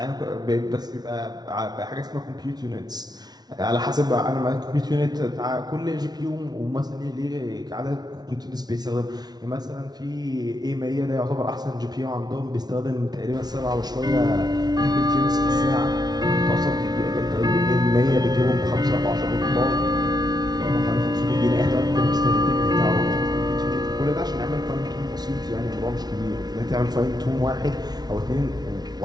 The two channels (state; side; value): late; left; 0.19 ms